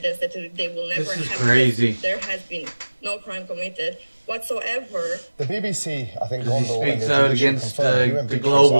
that they will never have. This is crazy. There has been no crime committed whatsoever. The BBC, I think, speaks out against the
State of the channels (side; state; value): both; inverted; correlation -1.00